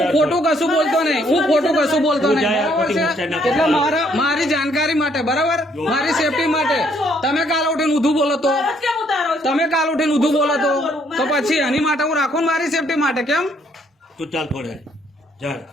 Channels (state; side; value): normal; both; correlation 0.68